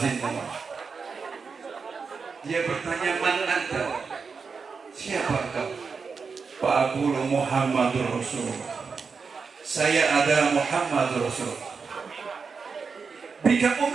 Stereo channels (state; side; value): quieter; left; 5.2 dB